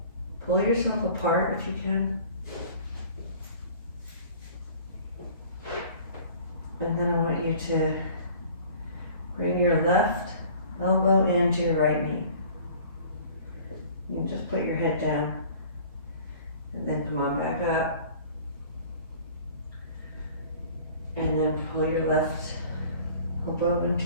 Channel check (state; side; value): inverted; both; correlation -0.48